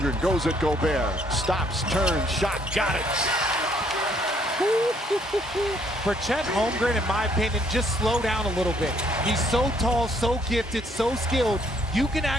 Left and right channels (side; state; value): both; normal; correlation 0.66